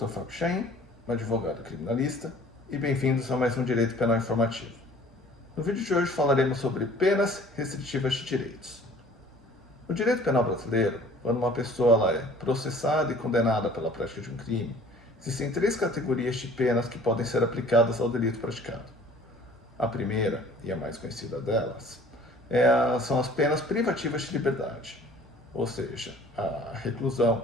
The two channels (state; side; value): normal; both; correlation 0.50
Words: Fábio Chaim, advogado criminalista, e bem-vindos a mais um Direito Penal Informativo. No vídeo de hoje falaremos sobre penas restritivas de direitos. No direito penal brasileiro, quando uma pessoa é processada e condenada pela prática de um crime, existem três categorias de penas que podem ser aplicadas ao delito praticado. A primeira, e a mais conhecida delas, são as penas privativas de liberdade, ou seja, a reclusão